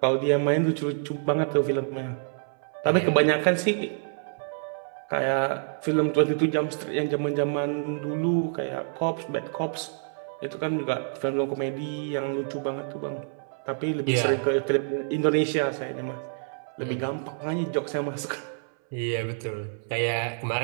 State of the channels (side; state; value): left; silent; 60 dB below the other